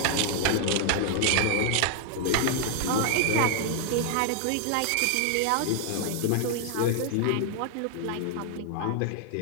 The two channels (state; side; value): different; both; correlation 0.00